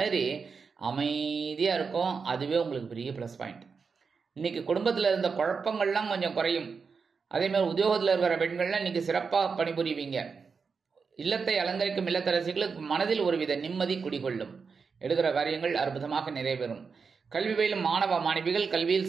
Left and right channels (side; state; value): left; quieter; 5.3 dB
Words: அமைதியாக இருக்கும். அதுவே உங்களுக்கு பெரிய ப்ளஸ் பாயிண்ட். இன்னைக்கு குடும்பத்தில் இருந்த குழப்பங்கள்லாம் கொஞ்சம் குறையும். அதேமாதிரி உத்தியோகத்தில் இருக்கிற பெண்கள்லாம் இன்னைக்கு சிறப்பாக பணிபுரிவீங்க. இல்லத்தை அலங்கரிக்கும் இல்லத்தரசிகளுக்கு மனதில் ஒருவித நிம்மதி குடிகொள்ளும். எடுக்கிற காரியங்கள் அற்புதமாக நிறைவேறும். கல்வி பயிலும் மாணவ மாணவிகள் கல்வியில்